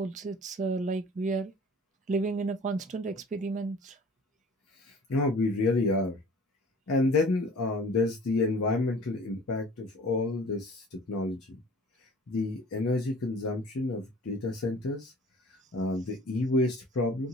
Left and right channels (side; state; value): both; normal; correlation 0.47